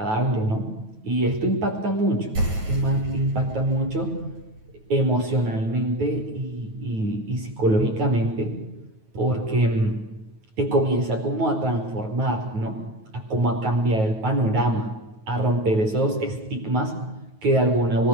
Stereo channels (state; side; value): late; left; 9.3 ms